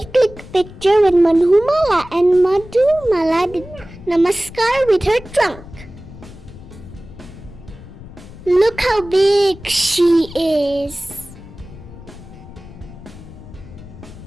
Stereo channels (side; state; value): left; noise; rumble, 17 dB below the sound